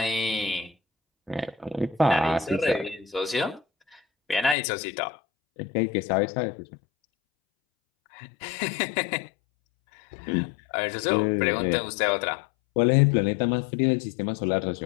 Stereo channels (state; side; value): drops out; right; at 4.5 s